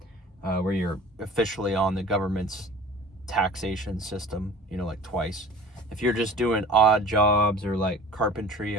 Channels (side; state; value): both; normal; correlation 0.44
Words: where you're officially on the government's taxation system, like twice. If you're just doing odd jobs or like carpentry